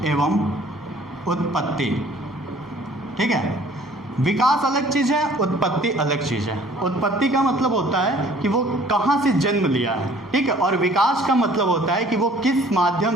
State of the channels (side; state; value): both; normal; correlation 0.54